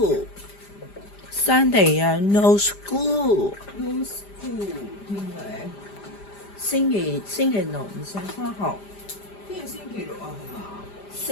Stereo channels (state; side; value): late; right; 5.0 ms